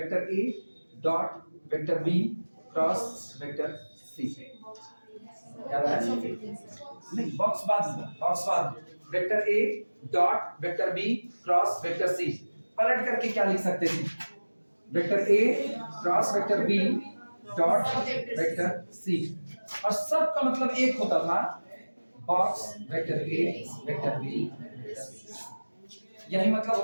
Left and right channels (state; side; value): inverted; both; correlation -1.00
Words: ए dot vector B cross vector C, याद आया? नहीं, बॉक्स बाद वेक्टर ए dot vector B cross vector C, पलट करके क्या लिख सकते थे, वेक्टर ए cross vector B dot vector सी, और सब का मतलब एक होता था, बॉक्स वेक्टर ए वेक्टर बी वेक्टर सी, यही मतलब